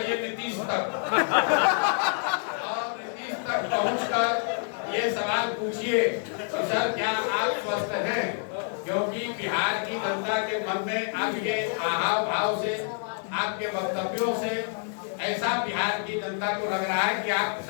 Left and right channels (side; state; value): right; silent; 60 dB below the other